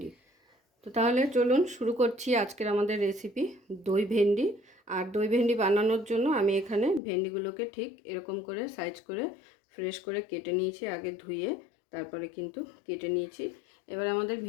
তো তাহলে চলুন শুরু করছি আজকের আমাদের রেসিপি দই ভেন্ডি। আর দই ভেন্ডি বানানোর জন্য আমি এখানে ভেন্ডিগুলোকে ঠিক এরকম করে সাইজ করে ফ্রেশ করে কেটে নিয়েছি, আগে ধুয়ে তারপরে কিন্তু কেটে নিয়েছি। এবার আমাদের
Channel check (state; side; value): drops out; right; at 7.0 s